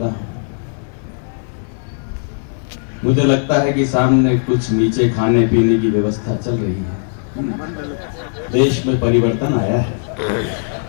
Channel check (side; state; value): right; silent; 59 dB below the other